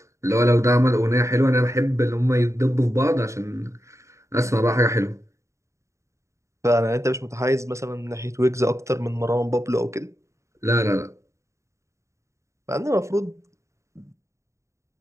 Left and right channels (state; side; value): late; left; 0.14 ms